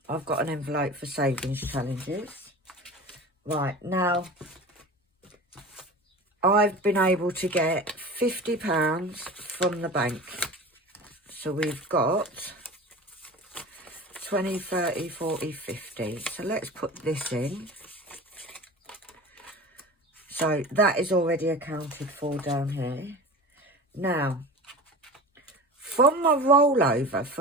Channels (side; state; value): both; normal; correlation 0.35